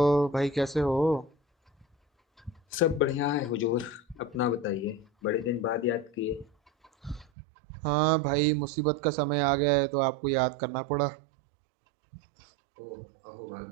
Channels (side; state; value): left; drops out; at 7.2 s